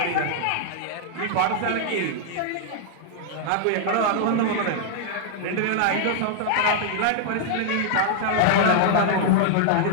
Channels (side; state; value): both; different; correlation -0.01